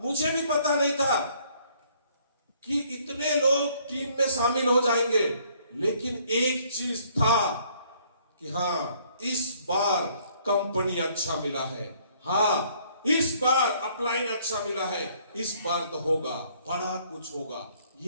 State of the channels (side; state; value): both; inverted; correlation -0.63